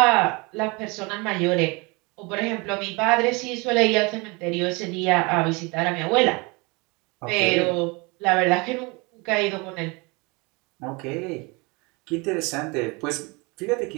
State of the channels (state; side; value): quieter; left; 27.4 dB